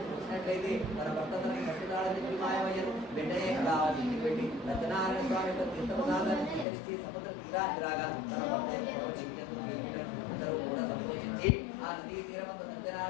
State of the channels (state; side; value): drops out; right; at 6.7 s